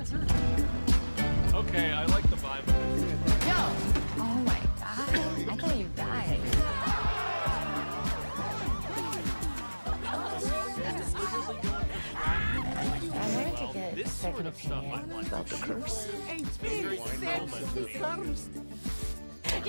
Okay, I like the vibe of this. No! Oh my God. I thought you died. I wanted to get This sort of stuff I like. About the curse. It's very You're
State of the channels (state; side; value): inverted; both; correlation -1.00